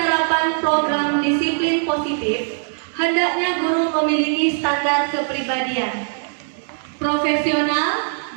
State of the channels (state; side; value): silent; left; digital silence